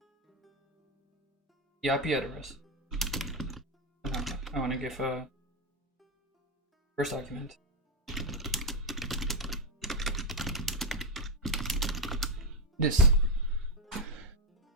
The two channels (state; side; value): normal; both; correlation 0.06